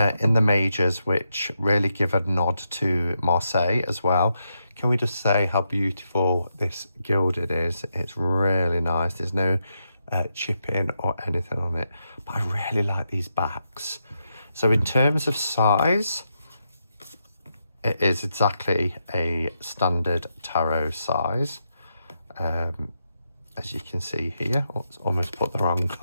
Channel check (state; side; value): inverted; both; correlation -0.83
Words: in the majors which really give a nod to Marseille as well. Can we just say how beautiful this gilded is? It's really nice. There's no chipping or anything on it, but I really like these backs. So in terms of size, it is exactly a standard tarot size. As you can see here, almost put the wrong